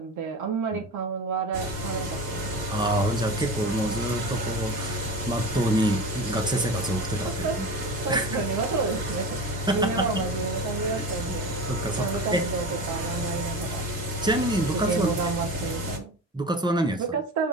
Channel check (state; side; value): normal; both; correlation 0.30